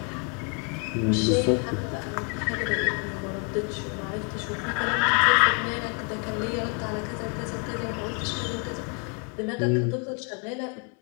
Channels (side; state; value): right; quieter; 34.1 dB